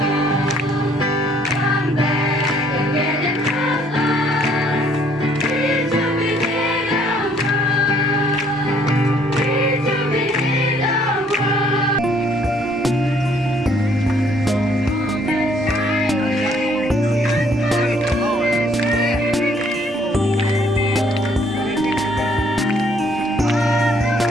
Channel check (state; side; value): normal; both; correlation 0.64